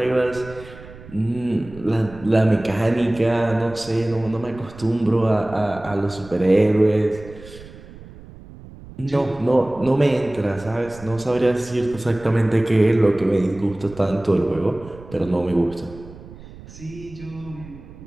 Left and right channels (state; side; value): noise; right; rumble, 18 dB below the sound